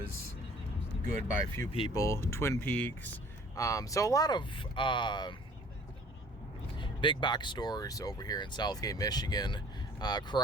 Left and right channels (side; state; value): both; normal; correlation 0.52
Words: good by a few people. Twin Peaks. So a lot of big box stores over here in Southgate, Michigan.